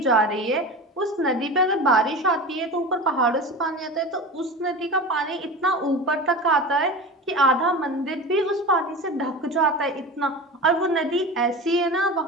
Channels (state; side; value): normal; both; correlation 0.30